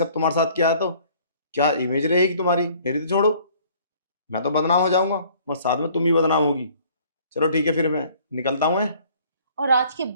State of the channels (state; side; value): inverted; both; correlation -0.56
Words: तुम्हारे साथ किया है, तो क्या इमेज रहेगी तुम्हारी? मेरी तो छोड़ो, मैं तो बदनाम हो जाऊंगा, बस साथ में तुम ही बदनाम होगी। चलो ठीक है, फिर मैं निकलता हूँ। और आज के